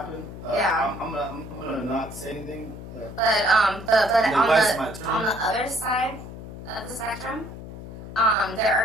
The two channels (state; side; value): noise; left; hum, 12 dB below the sound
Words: Yeah. I'm gonna not say anything. But on the other side of the spectrum, there